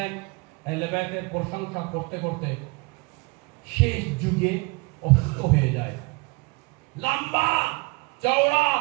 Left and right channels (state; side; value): quieter; left; 28.1 dB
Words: আহলে বায়তের প্রশংসা করতে করতে শেষ যুগে অসুস্থ হয়ে যায়। লম্বা চওড়া